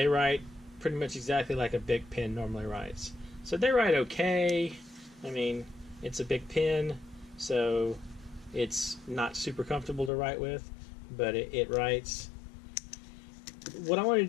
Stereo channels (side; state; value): right; drops out; at 10.1 s